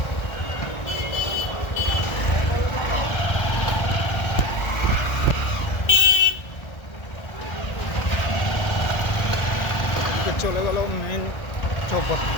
চলে গেল মেন চৌক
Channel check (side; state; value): right; late; 1.3 ms